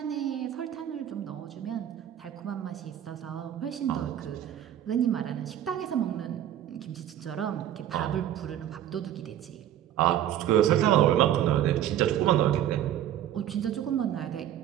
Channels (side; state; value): left; quieter; 11.2 dB